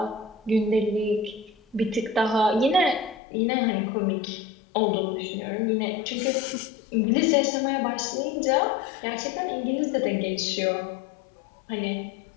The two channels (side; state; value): right; drops out; at 3.2 s